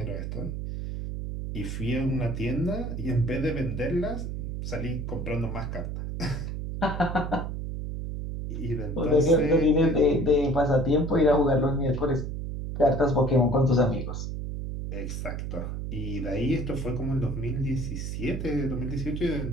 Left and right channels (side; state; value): right; noise; hum, 5 dB below the sound